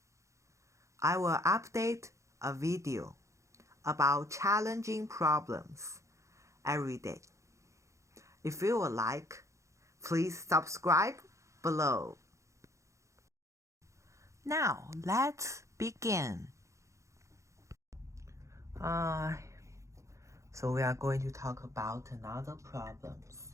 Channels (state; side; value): late; left; 0.15 ms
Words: I will update a video about challenging problems every day. If you would like, please subscribe below. Now, let's begin. So we are going to talk about another problems.